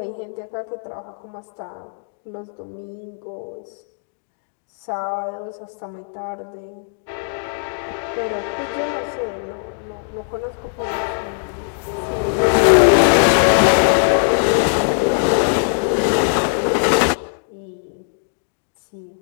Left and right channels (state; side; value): silent; right; digital silence